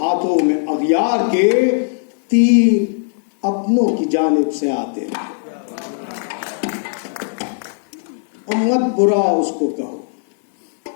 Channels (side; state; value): right; silent; 62 dB below the other